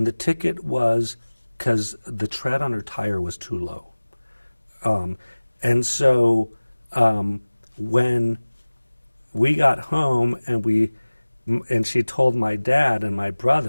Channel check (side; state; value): both; inverted; correlation -1.00